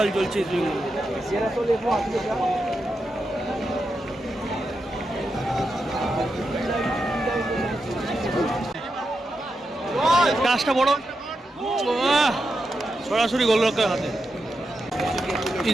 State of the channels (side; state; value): both; normal; correlation 0.87